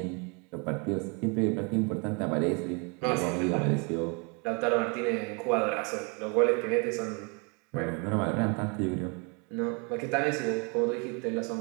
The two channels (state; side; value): quieter; left; 33.4 dB